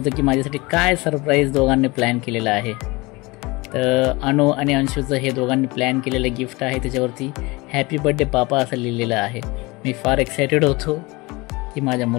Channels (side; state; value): right; quieter; 23.9 dB